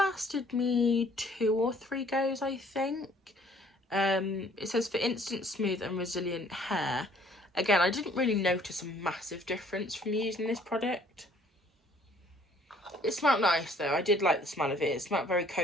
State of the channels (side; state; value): both; normal; correlation 0.59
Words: me 2 or 3 goes, I think. It says for instant smooth and resilient hair. Again, I didn't really notice a massive difference from using this product. It smelled nice though. I did like the smell of it. It smelled very